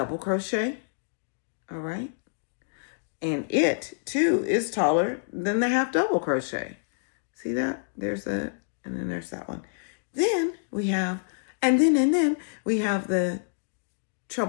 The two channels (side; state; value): right; silent; digital silence